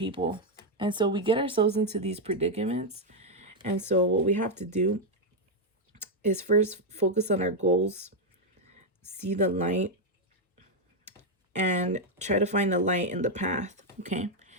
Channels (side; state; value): both; normal; correlation 0.01